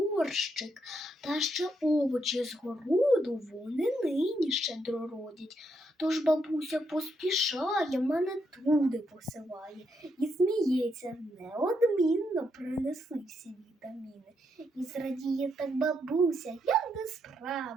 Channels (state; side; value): normal; both; correlation 0.78